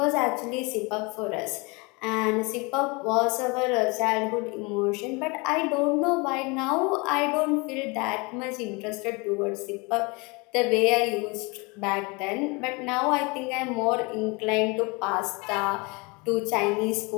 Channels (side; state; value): right; quieter; 27.9 dB